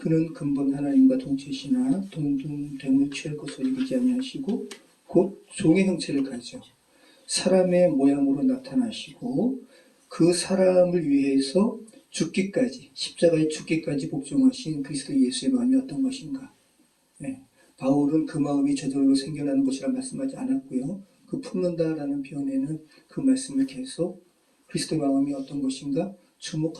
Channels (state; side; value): identical; both; correlation 1.00